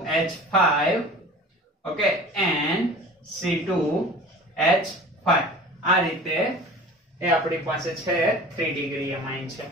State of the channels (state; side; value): normal; both; correlation 0.40